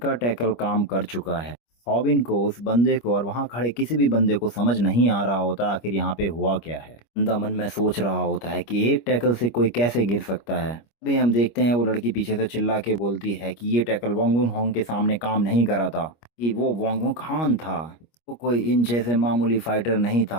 टैकल काम कर चुका है। हॉबिन को, उस बंदे को और वहाँ खड़े किसी भी बंदे को समझ नहीं आ रहा होता आखिर यहाँ पे हुआ क्या है। बंदा मन में सोच रहा होता है कि एक टैकल से कोई कैसे गिर सकता है। अभी हम देखते हैं वो लड़की पीछे से चिल्ला के बोलती है कि ये टैकल वांगुन होंग के सामने काम नहीं करा था, कि वो वांगुन खान था, वो कोई इन जैसे मामूली फाइटर नहीं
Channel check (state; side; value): late; right; 25 ms